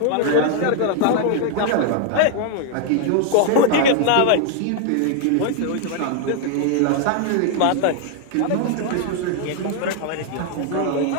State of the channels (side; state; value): both; different; correlation 0.00